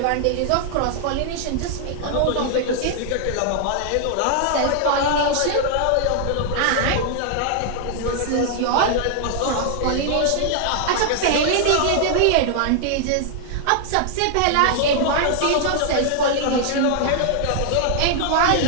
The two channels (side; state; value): both; different; correlation 0.00